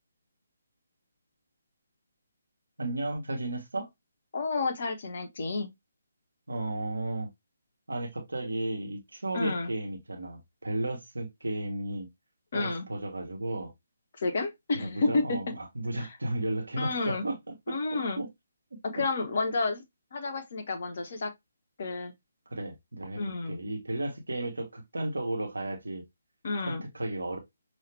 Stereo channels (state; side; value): inverted; both; correlation -0.84